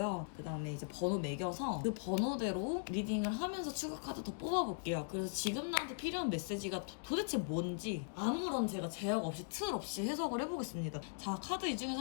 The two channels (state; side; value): silent; right; digital silence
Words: 그 다음에 이제 번호 매겨서 그 번호대로 리딩을 하면서 추가 카드 더 뽑아볼게요. 그래서 지금 나한테 필요한 메시지가 도대체 뭔지 아무런 제가 제약 없이 틀 없이 해석을 해보겠습니다. 자, 카드 이